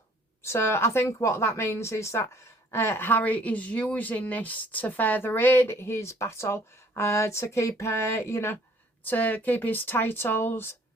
So I think what that means is that Harry is using this to further aid his battle, to keep, to keep his titles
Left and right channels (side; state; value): both; normal; correlation 0.58